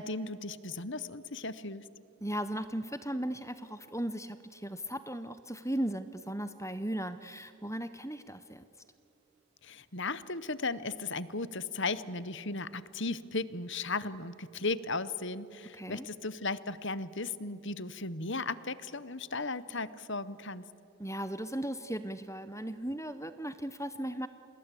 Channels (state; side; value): normal; both; correlation 0.30